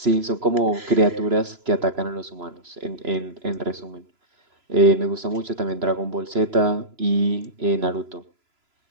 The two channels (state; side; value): late; left; 3.0 ms